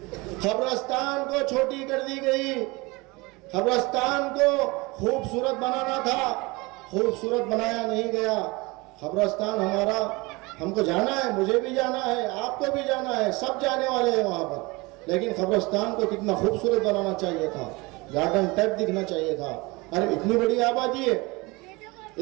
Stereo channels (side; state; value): left; quieter; 24.5 dB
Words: खबरस्तान को छोटी कर दी गई। कब्रिस्तान को खूबसूरत बनाना था, खूबसूरत बनाया नहीं गया। कब्रिस्तान हमारा, हमको जाना है, मुझे भी जाना है, आपको भी जाना है, सब जाने वाले हैं वहाँ पर। लेकिन कब्रिस्तान को कितना खूबसूरत बनाना चाहिए था, गार्डन टाइप दिखना चाहिए था। अरे इतनी बड़ी आबादी है,